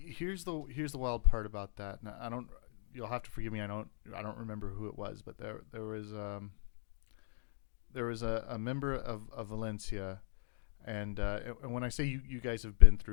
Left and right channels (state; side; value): silent; right; digital silence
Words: the wild part about that. Now, I don't. You'll have to forgive me. I don't remember who it was, but there was a member of Valencia, and when I say you guys have been